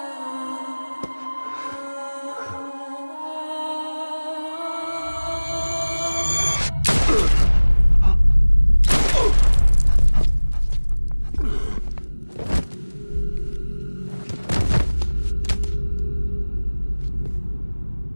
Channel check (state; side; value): inverted; both; correlation -1.00